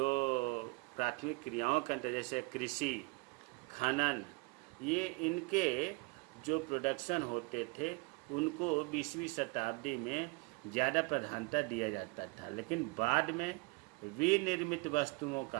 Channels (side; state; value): left; quieter; 27.0 dB